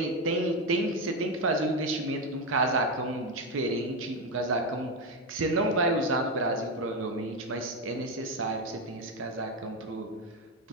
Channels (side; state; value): both; normal; correlation 0.11